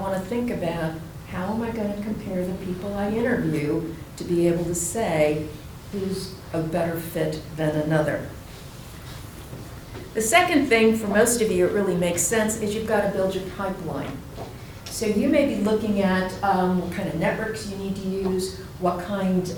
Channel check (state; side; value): identical; both; correlation 1.00